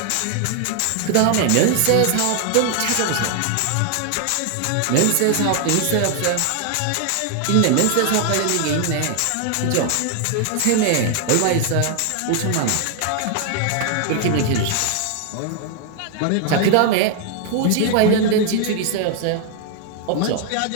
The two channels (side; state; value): both; different; correlation 0.00